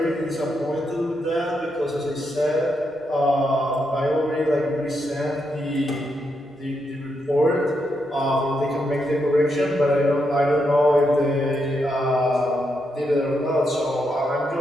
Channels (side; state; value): both; normal; correlation 0.81